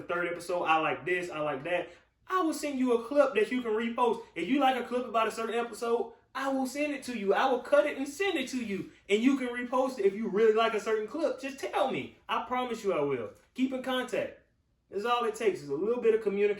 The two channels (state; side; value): identical; both; correlation 1.00